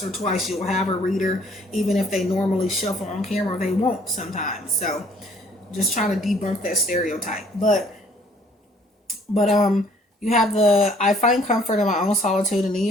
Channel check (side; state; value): both; normal; correlation 0.60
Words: or twice, you'll have a reader, even if they normally shuffle on camera, they won't sometimes. So, just trying to debunk that stereotype. But you have the I find comfort in my own solitude, and then